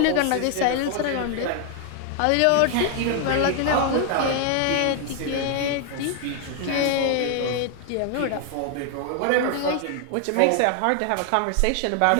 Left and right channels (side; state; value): both; different; correlation 0.00